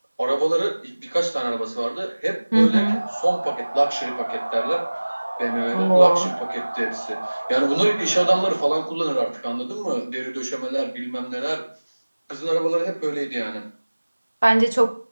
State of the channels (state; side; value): inverted; both; correlation -1.00